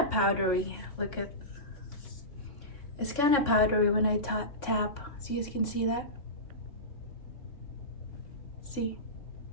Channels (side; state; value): right; late; 3.6 ms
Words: powdery. Look at, it's kind of powdery when I tap, so you can see that. See,